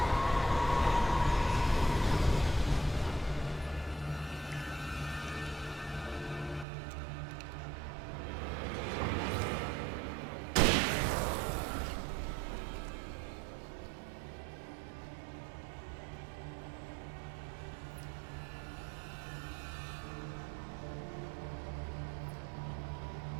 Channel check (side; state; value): left; drops out; at 6.7 s